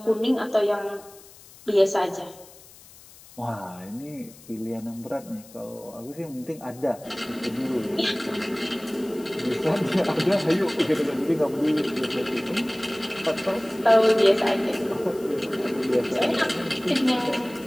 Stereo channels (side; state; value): left; noise; hiss, 22 dB below the sound